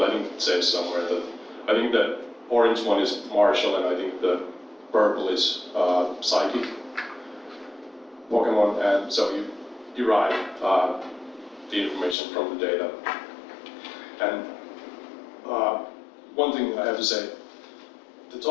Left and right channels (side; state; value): right; drops out; at 12.2 s